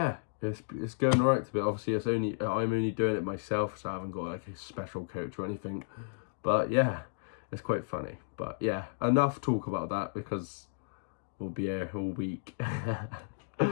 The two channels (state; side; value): silent; right; digital silence